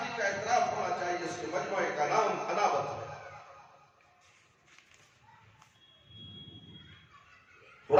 کا اعتراف ہونا چاہیے۔ اس کے مجموعے کا نام انابت ہے۔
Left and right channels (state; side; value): identical; both; correlation 1.00